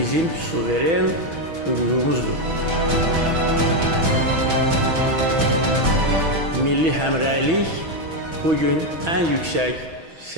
suveren hüququmuzdur. Milli həmrəylik bugün ən yüksək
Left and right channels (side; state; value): left; late; 6.1 ms